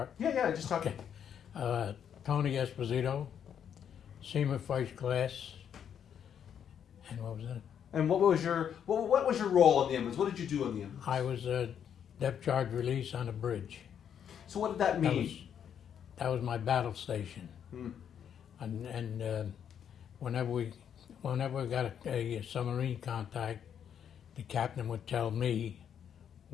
Yeah, just talk. Okay. Tony Esposito, Seaman First Class, and what was that? And what was your role on the Emmons? What did you do on the Emmons? I was a depth charge release on a bridge. So what did that mean? That was my battle station. Hmm. And whenever we got a submarine contact, the captain would tell me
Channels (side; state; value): right; quieter; 8.6 dB